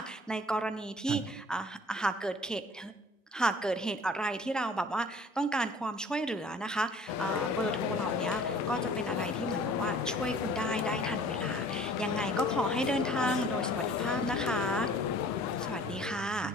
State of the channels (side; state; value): both; normal; correlation 0.50